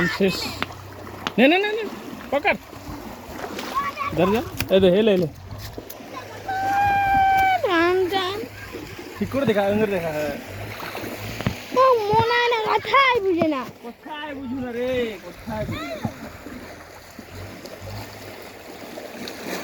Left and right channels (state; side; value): identical; both; correlation 1.00